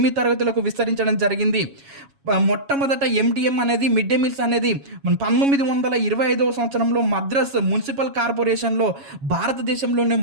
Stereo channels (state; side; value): late; left; 7.2 ms